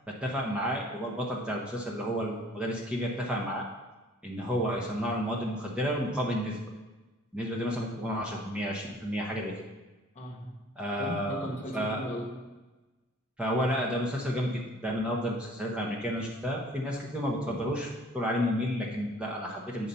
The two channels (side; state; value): both; normal; correlation 0.54